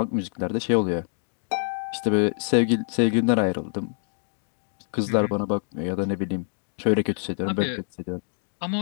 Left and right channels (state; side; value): silent; right; digital silence